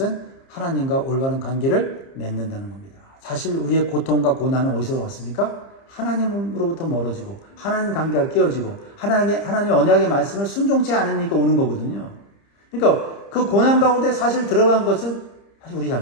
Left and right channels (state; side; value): late; right; 30 ms